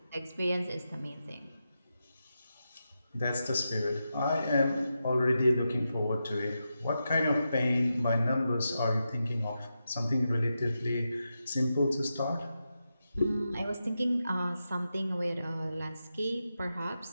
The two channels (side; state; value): both; inverted; correlation -0.88